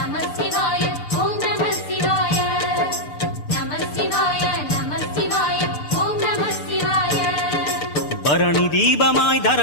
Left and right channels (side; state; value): right; late; 6.7 ms